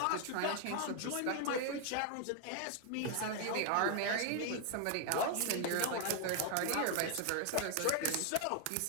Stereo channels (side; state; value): both; different; correlation 0.00